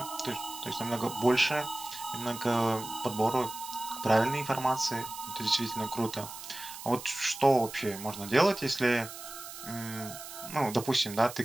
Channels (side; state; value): right; noise; hiss, 12 dB below the sound